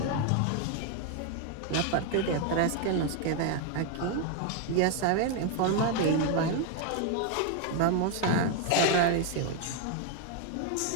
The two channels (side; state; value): both; different; correlation 0.01